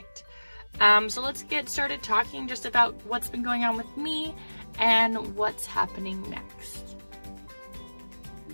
So let's get started talking just about what's been going on with me and what's happening next.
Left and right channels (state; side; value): inverted; both; correlation -1.00